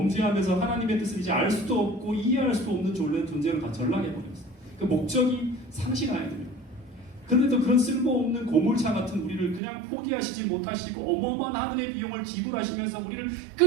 하나님의 뜻을 이제 알 수도 없고 이해할 수도 없는 존재를 다 전락해버렸어요. 그 목적이 상실해야 돼요. 그런데도 그런 쓸모없는 고물차 같은 우리를 그냥 포기하시지 못하시고 어마어마한 하늘의 비용을 지불하시면서 우리를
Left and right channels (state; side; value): drops out; left; at 9.6 s